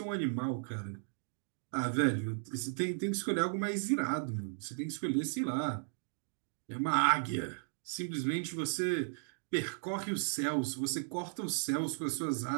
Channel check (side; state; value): left; silent; digital silence